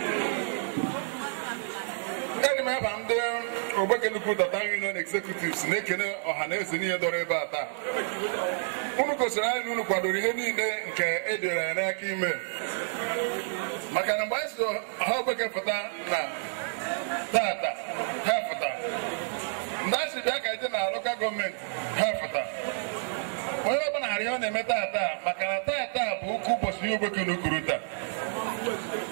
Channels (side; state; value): left; silent; digital silence